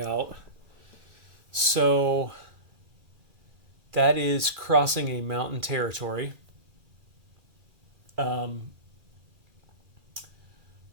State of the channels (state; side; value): late; left; 2.4 ms